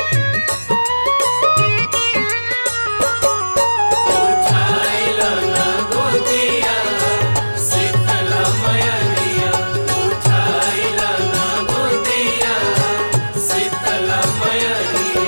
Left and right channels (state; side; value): inverted; both; correlation -1.00